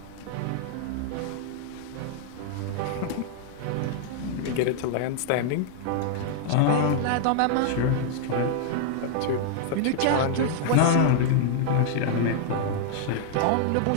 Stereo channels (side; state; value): both; different; correlation -0.01